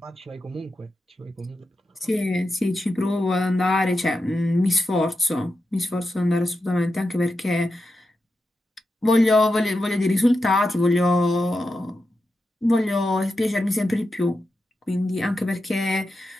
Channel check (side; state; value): both; normal; correlation 0.89